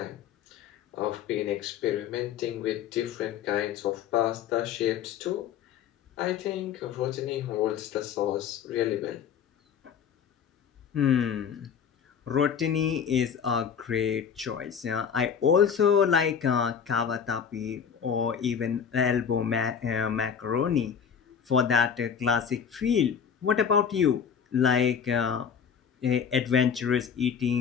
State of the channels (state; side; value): quieter; right; 7.5 dB